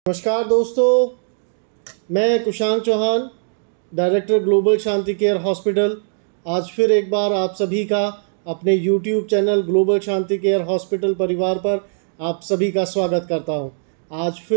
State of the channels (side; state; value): left; silent; digital silence